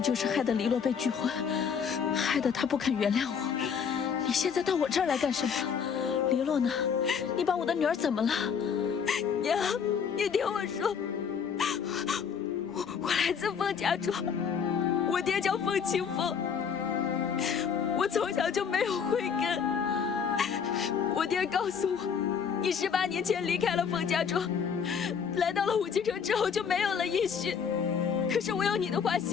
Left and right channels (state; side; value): quieter; right; 6.8 dB